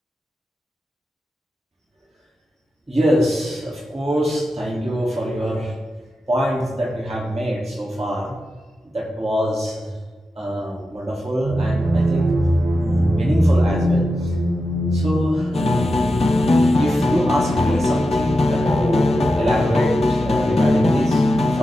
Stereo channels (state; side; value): normal; both; correlation 0.90